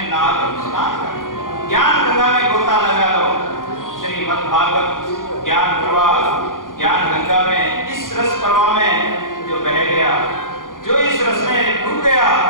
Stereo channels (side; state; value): right; late; 0.90 ms